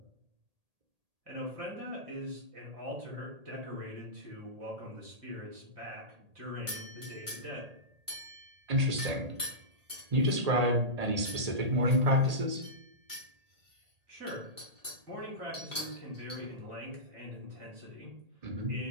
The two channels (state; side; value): late; left; 1.8 ms